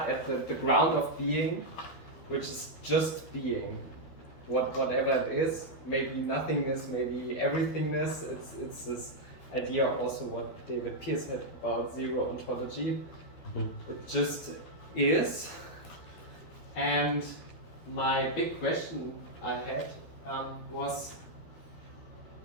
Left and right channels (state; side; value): late; right; 12 ms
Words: at the ground of being, which is just being, whatever it is, maybe nothingness, maybe everythingness. It's this idea also what David Pearce had about zero ontology. It just is. And my big question I had was